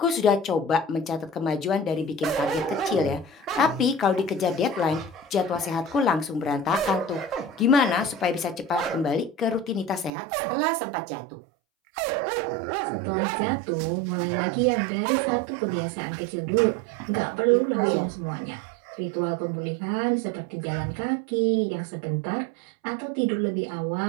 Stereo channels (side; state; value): left; drops out; at 10.1 s